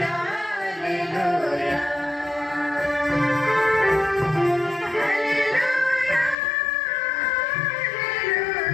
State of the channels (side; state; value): right; drops out; at 6.4 s